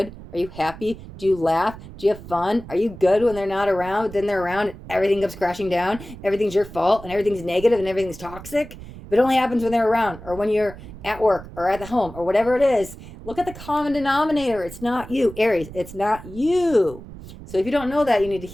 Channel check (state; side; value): noise; right; rumble, 15 dB below the sound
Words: Are you happy? Do you laugh? Do you have fun? Are you good when they're not around? Then they're around and everything comes crashing down. Everything's your fault and everything's negative and everything's toxic. But it only happens when they're around or when you're at work or at the home or whatever it is. Look at the common denominator. It's not you, Aries. It's not you. So if you don't know that, you need to